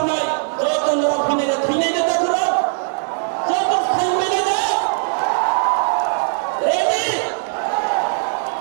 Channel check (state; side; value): silent; left; digital silence